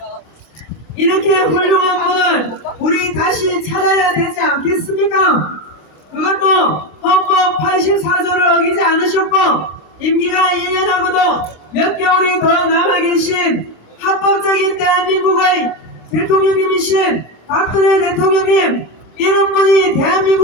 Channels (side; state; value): right; late; 26 ms